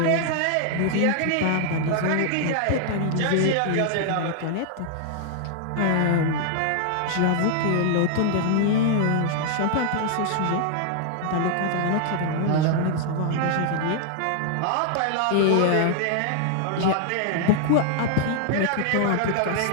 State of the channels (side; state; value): both; different; correlation 0.00